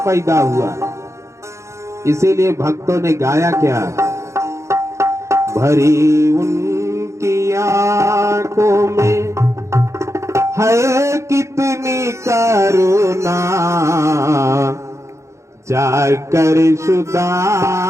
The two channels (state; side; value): late; left; 0.14 ms